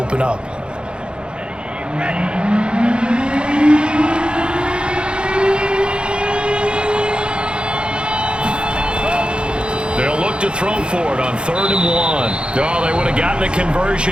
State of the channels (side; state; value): left; late; 0.054 ms